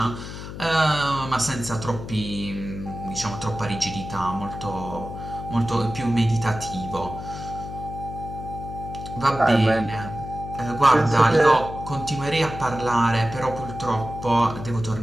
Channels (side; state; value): left; noise; hum, 10 dB below the sound